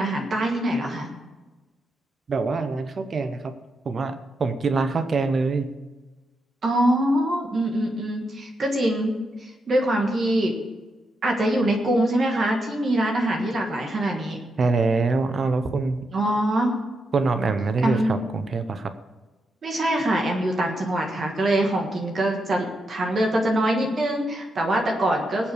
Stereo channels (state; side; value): normal; both; correlation 0.83